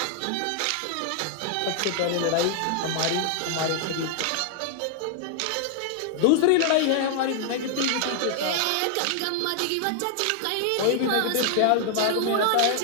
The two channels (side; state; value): both; different; correlation 0.00